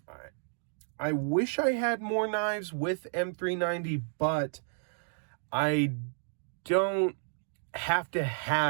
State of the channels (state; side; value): silent; left; digital silence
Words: I wish I had more knives with M390, but I don't have to